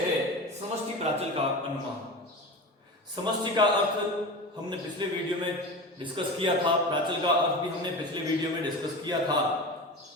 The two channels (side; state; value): both; normal; correlation 0.29